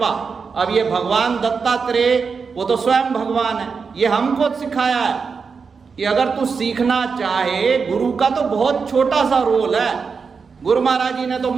अब ये भगवान दत्तात्रेय, वो तो स्वयं भगवान है, ये हमको सिखाया है कि अगर तू सीखना चाहे, गुरु का तो बहुत छोटा सा रोल है। गुरु महाराज जी ने तो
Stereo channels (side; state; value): left; quieter; 5.4 dB